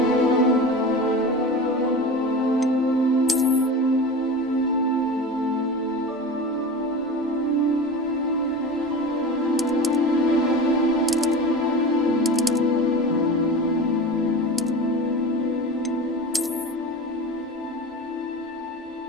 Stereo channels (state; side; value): normal; both; correlation 0.31